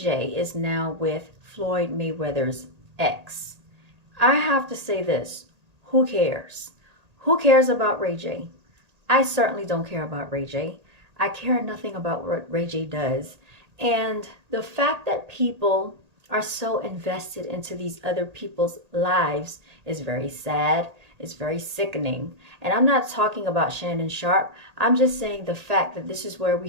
is now with Floyd Mayweather's ex. I have to say this, who cares? Who cares about Ray J? I certainly don't care about Ray J. I care nothing about what Ray J does. And the fact that people are so invested into these other people's lives is very sad. It's very sickening. And I'm not talking about Shannon Sharpe. I'm just saying the fact that this is where we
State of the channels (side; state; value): left; late; 1.9 ms